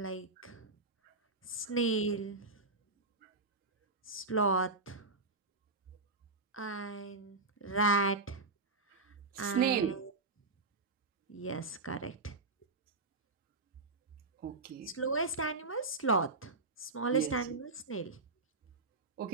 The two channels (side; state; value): left; quieter; 3.6 dB